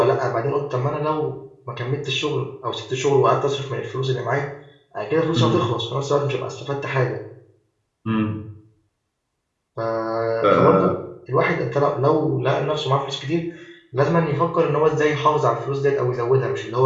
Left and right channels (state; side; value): identical; both; correlation 1.00